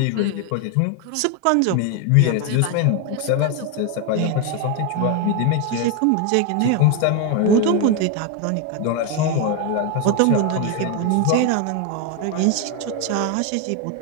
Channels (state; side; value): different; both; correlation 0.01